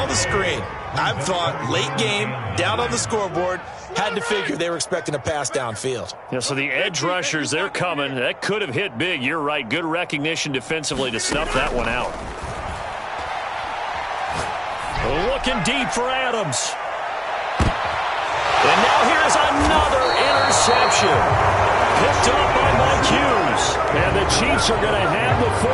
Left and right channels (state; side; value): identical; both; correlation 1.00